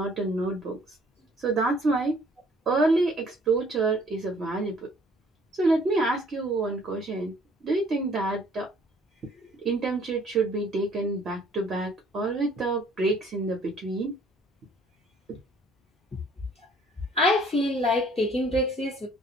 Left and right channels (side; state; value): both; normal; correlation 0.59